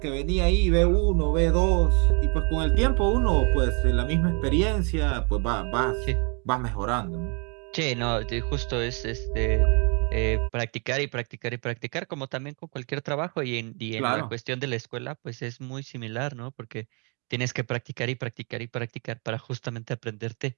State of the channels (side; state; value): left; quieter; 35.1 dB